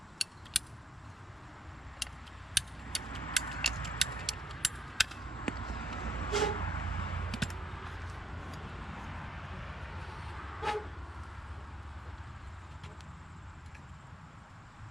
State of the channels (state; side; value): normal; both; correlation 0.72